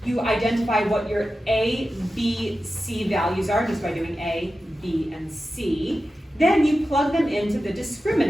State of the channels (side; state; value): both; normal; correlation 0.92